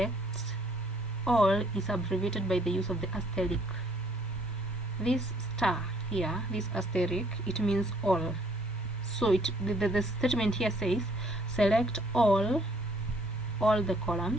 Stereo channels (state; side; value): normal; both; correlation 0.64